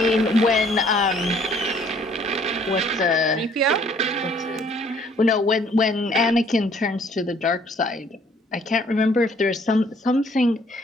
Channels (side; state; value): both; normal; correlation 0.61